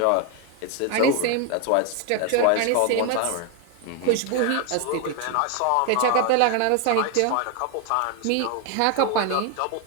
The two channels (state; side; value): different; both; correlation 0.01